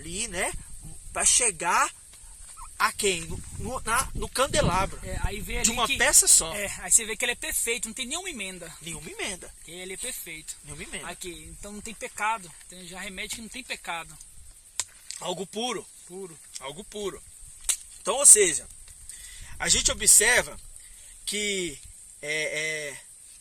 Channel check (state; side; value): identical; both; correlation 1.00